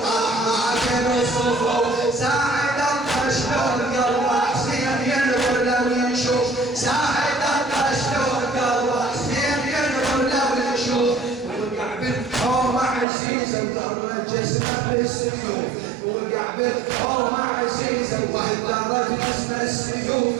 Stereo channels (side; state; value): left; drops out; at 13.1 s